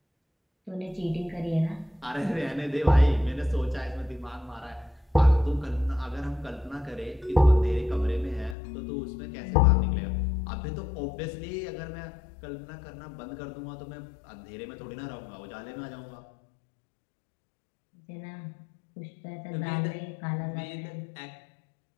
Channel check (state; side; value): drops out; right; at 8.6 s